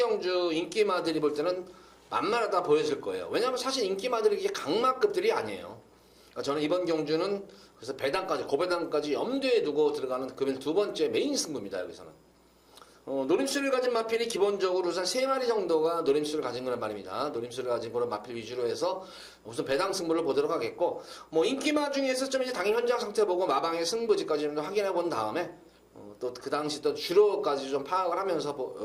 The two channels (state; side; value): identical; both; correlation 1.00